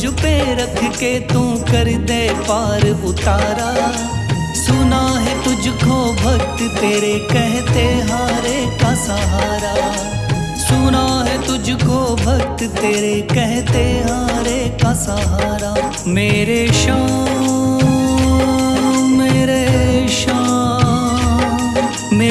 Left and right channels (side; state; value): both; identical; correlation 1.00